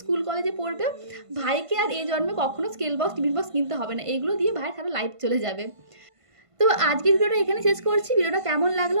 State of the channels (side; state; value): left; late; 1.5 ms